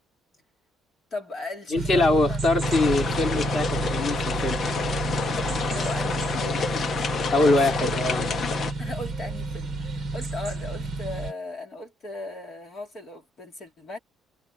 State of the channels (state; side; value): normal; both; correlation 0.74